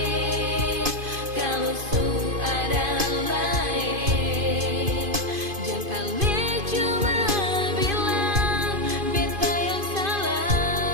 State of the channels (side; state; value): left; late; 2.5 ms